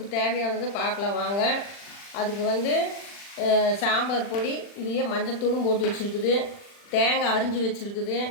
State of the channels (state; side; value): late; right; 40 ms